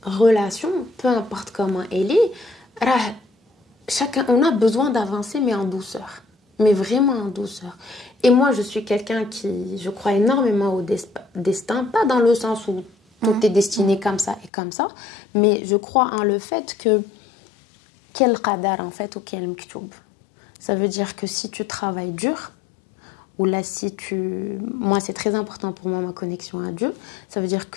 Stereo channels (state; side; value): drops out; right; at 14.5 s